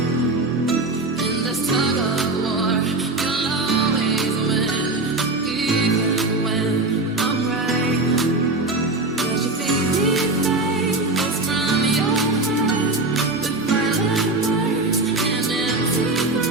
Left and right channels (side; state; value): left; quieter; 3.1 dB